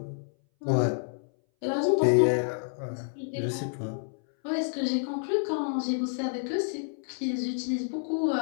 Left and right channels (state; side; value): silent; right; 58 dB below the other